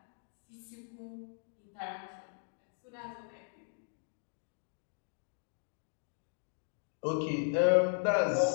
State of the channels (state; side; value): silent; right; digital silence